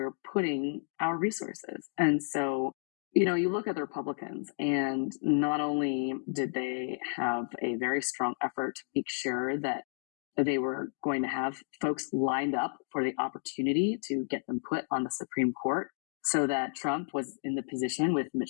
putting our resources. And so, you look at the Republicans, and not only did they have a very strong effort to make sure that they were going to have folks lined up for the opportunity to get them put on the Supreme Court, so that Trump was in the position with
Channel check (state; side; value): silent; right; digital silence